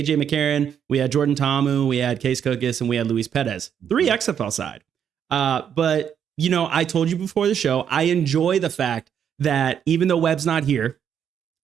McCarron, we had Jordan Ta'amu, we had Case Cookus, and we had Luis Perez. 3 XFL side. But, I told you before the show, I enjoy the fact that even though Webb's not here,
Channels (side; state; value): left; quieter; 8.5 dB